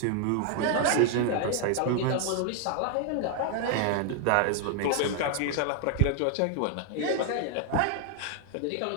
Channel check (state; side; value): different; both; correlation 0.00